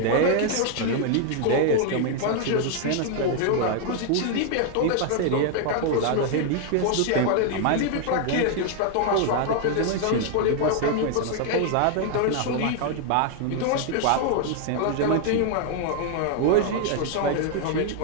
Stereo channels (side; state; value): both; different; correlation 0.00